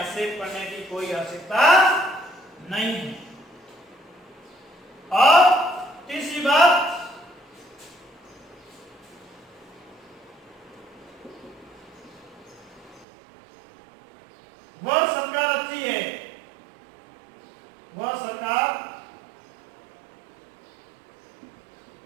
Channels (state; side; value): drops out; left; at 13.1 s